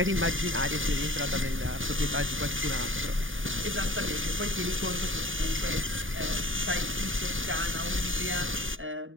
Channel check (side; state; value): left; late; 0.58 ms